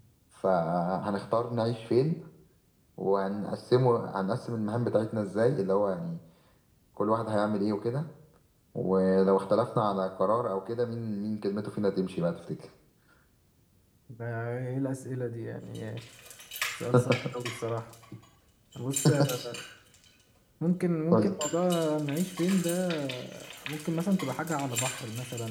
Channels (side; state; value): both; identical; correlation 1.00